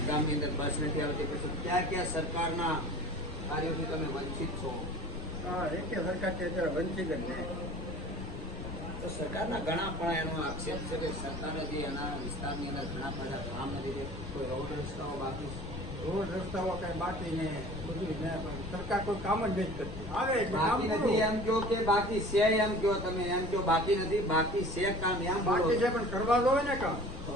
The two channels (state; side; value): noise; left; rumble, 10 dB below the sound